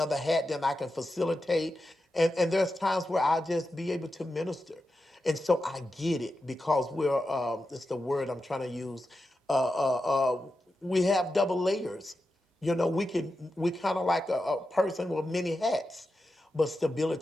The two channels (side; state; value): both; normal; correlation 0.90